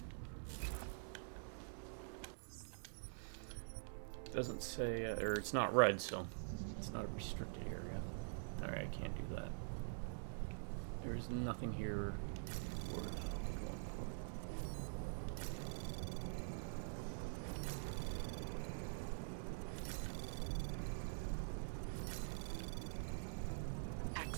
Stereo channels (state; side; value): silent; left; digital silence